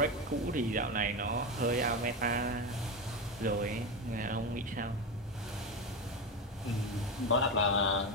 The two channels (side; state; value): both; normal; correlation 0.16